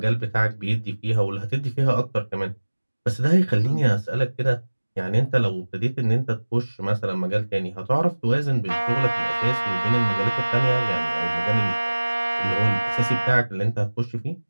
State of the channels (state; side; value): inverted; both; correlation -1.00